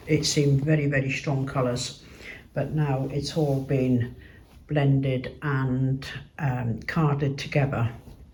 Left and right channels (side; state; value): both; identical; correlation 1.00